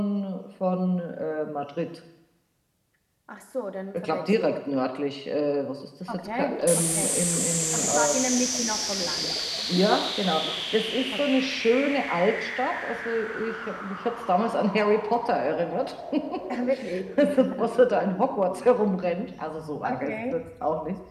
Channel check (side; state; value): both; identical; correlation 1.00